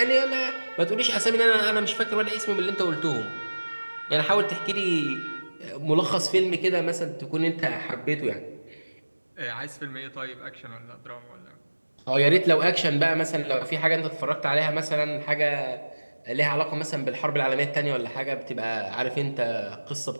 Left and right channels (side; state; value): both; inverted; correlation -1.00